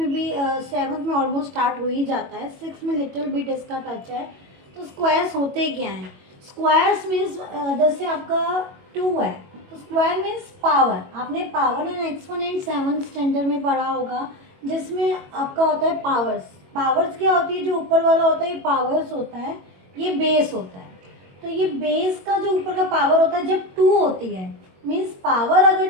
भी, सेवन्थ में ऑलमोस्ट स्टार्ट हो ही जाता है, सिक्स में लिटिल बिट इसका टच है। तो स्क्वायर्स होते क्या हैं? स्क्वायर्स मीन्स जैसे आपका टू है तो स्क्वायर मीन्स पावर। आपने power and exponent seventh standard में पढ़ा होगा, जिसमें आपका होता है पावर्स। पावर्स क्या होती है? जो ऊपर वाला होता है ये पावर्स होता है, ये बेस होता है। तो ये बेस का जो ऊपर का पावर होता है जब टू होती है, मीन्स पावर अगर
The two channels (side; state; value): left; late; 22 ms